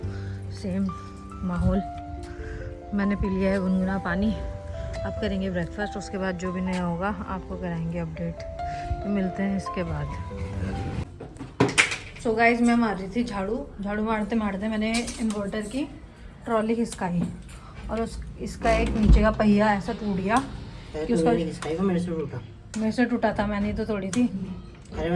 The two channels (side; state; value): both; identical; correlation 1.00